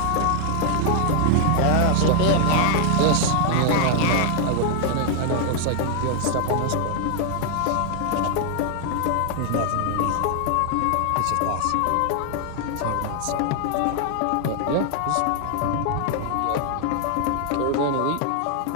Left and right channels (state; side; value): different; both; correlation 0.00